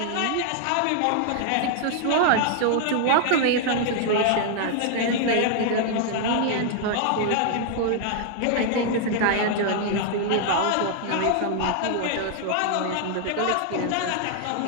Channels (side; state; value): both; different; correlation 0.00